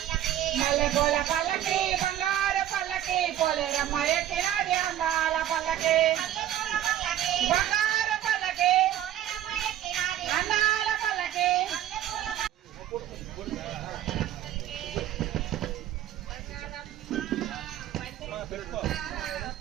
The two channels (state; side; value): quieter; left; 11.9 dB